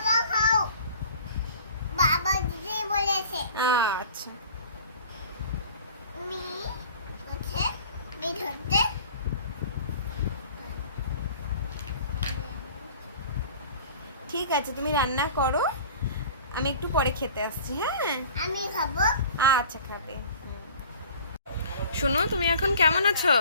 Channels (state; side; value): inverted; both; correlation -0.46